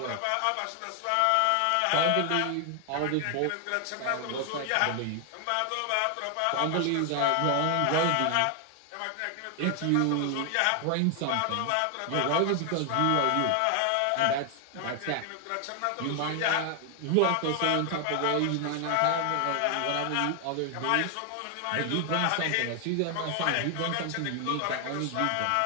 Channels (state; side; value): different; both; correlation 0.00